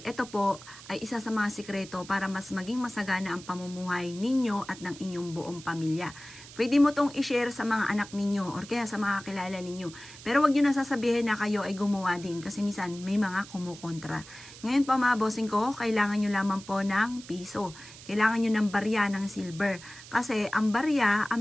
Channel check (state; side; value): noise; right; hiss, 17 dB below the sound